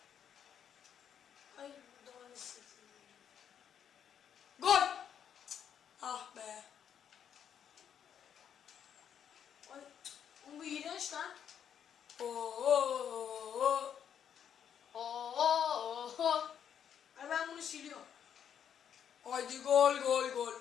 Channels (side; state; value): right; quieter; 8.6 dB